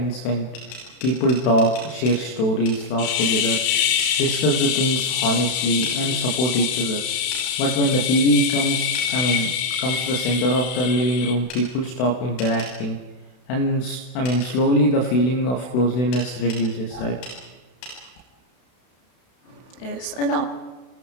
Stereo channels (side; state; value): right; late; 32 ms